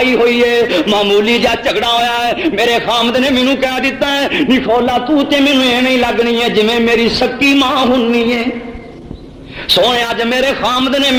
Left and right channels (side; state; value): both; identical; correlation 1.00